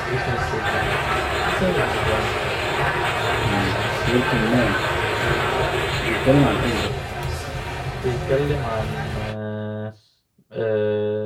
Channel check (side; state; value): both; identical; correlation 1.00